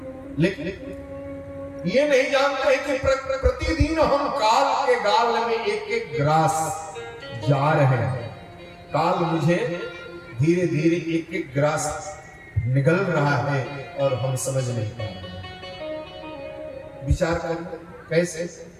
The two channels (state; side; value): identical; both; correlation 1.00